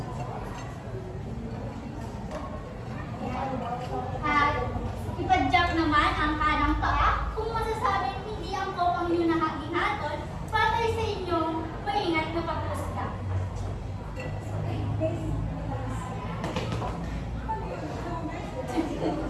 At ipadyak naman ang kanang paa kung masasabing hindi angkop ang inyong naging hatol batay sa inyong maingat na paghusga.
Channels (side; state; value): both; identical; correlation 1.00